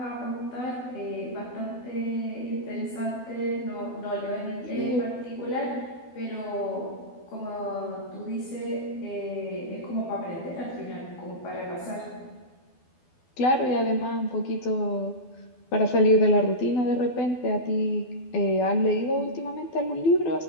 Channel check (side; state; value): right; late; 12 ms